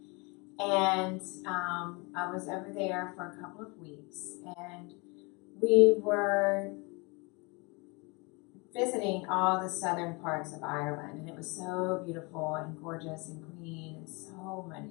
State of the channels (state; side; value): quieter; right; 28.8 dB